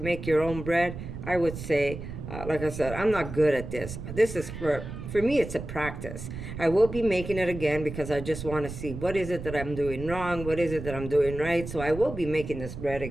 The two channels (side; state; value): right; noise; rumble, 9 dB below the sound